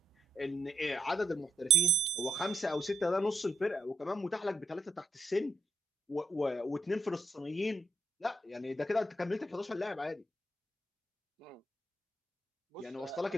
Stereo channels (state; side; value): normal; both; correlation 0.78